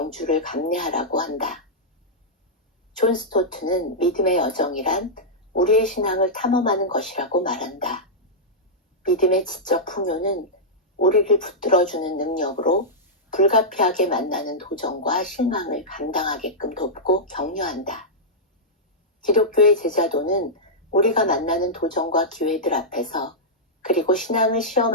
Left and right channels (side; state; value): both; normal; correlation -0.10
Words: 감내하라고 한다. 존 스토트는 믿음의 여정이란 우리의 신앙을 탐험하는 것이라고 말한다. 믿음의 지적 풍요는 우리를 붙들어주는 능력으로 불가피하게 만나는 도전과 실망을 감당하게끔 돕고 격려한다. 기독교의 제자도는 우리가 만나는 도전과 기회들 앞에서 그리고 신앙을